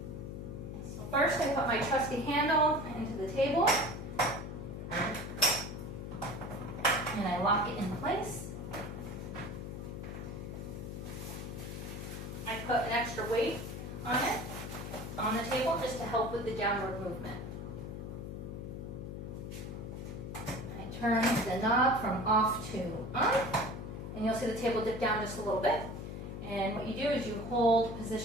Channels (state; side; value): noise; left; hum, 7 dB below the sound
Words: So first I put my trusty handle into the table and I lock it in place. I put an extra weight on it, on the table, just to help with the downward movement. I turn the knob from off to on, and you'll see the table dip down just a little bit. And what you do is you hold